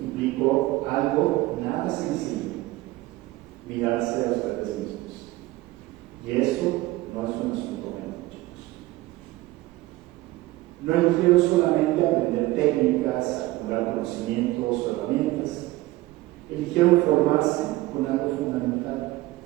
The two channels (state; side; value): quieter; left; 18.6 dB